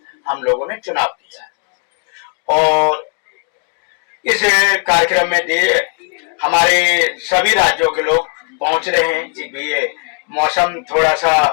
हम लोगों ने चुनाव किया है। और इस कार्यक्रम में हमारे सभी राज्यों के लोग पहुंच रहे हैं कि भी ये मौसम थोड़ा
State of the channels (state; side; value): quieter; right; 38.1 dB